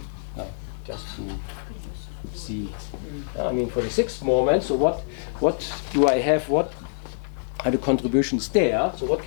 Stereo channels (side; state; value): right; silent; digital silence